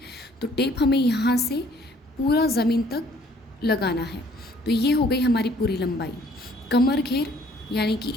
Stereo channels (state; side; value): normal; both; correlation 0.60